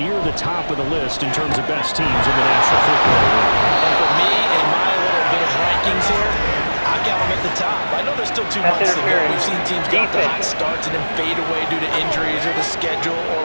the top of the list in terms of best teams in the National Football League. And for me and my little bit of rankings here, I got them at the top. I know there's still 2 months to go. We've seen teams get the hot starts and then fade away due to injuries or the schedule or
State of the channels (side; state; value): both; inverted; correlation -1.00